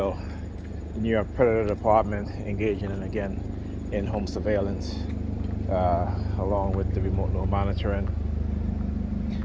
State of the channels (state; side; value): identical; both; correlation 1.00